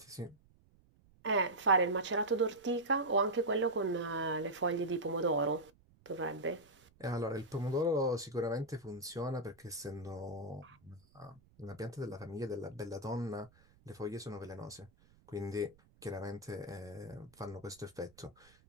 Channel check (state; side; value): noise; right; rumble, 29 dB below the sound